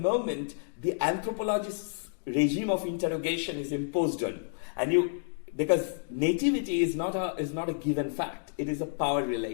the anthropologist's regime of interrogation is imposed on you, and because nativity is not a given fact. It is a power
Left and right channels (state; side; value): silent; right; digital silence